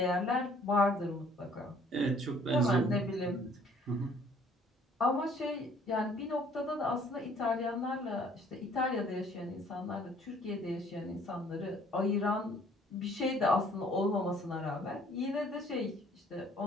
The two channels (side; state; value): both; normal; correlation 0.58